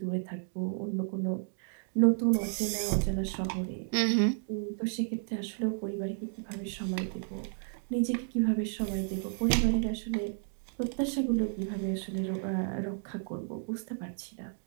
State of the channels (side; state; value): left; silent; digital silence